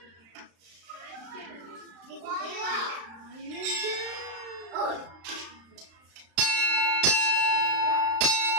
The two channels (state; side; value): late; left; 35 ms